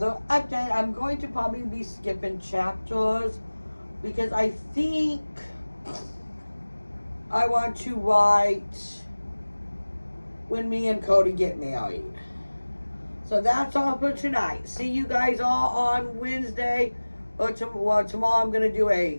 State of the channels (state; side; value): inverted; both; correlation -1.00